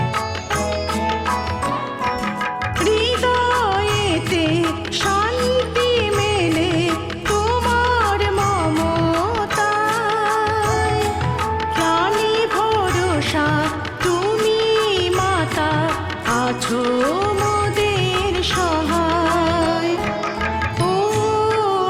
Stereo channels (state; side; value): identical; both; correlation 1.00